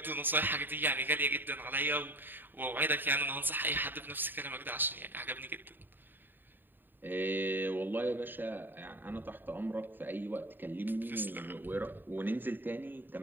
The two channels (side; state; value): left; late; 0.093 ms